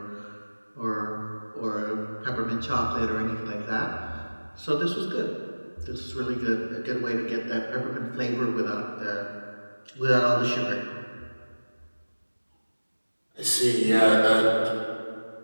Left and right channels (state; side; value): inverted; both; correlation -1.00